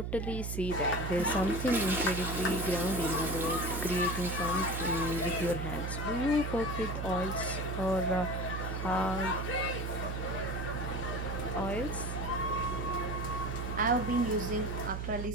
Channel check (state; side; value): noise; right; hum, 3 dB below the sound